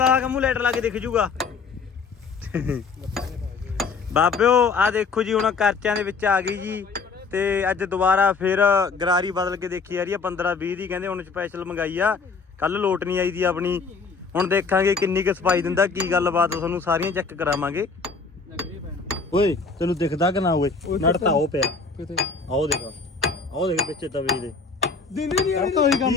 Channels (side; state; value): right; quieter; 4.7 dB